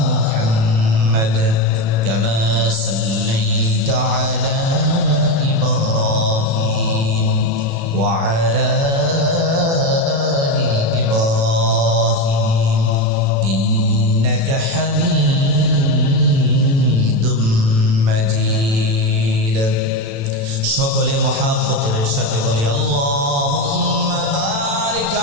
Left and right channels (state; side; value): late; left; 36 ms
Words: मुहम्मद कमा सल्लैता अला وعلى آل إبراهيم إنك حميد مجيد। সকলে মহাব্বতের সাথে বলি, আল্লাহুম্মা বারিক